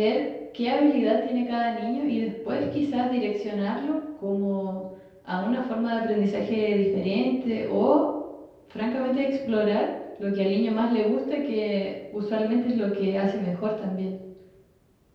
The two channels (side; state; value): both; identical; correlation 1.00